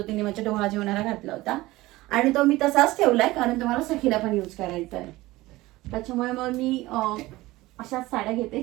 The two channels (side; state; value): left; quieter; 18.9 dB